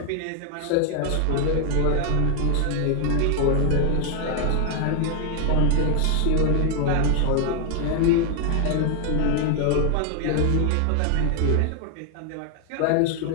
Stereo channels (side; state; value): both; different; correlation 0.00